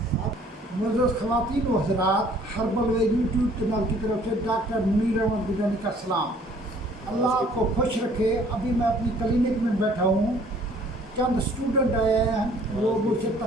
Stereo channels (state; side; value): normal; both; correlation 0.57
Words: ख़वातीन व हज़रात, हर्बल वे YouTube channel की तरफ से डॉक्टर मुनीर अहमद गिलानी का सलाम। अल्लाह आपको खुश रखे। अभी मैं अपनी क्लिनिक में बैठा हूँ। चंद स्टूडेंट आए हैं, वो मुझसे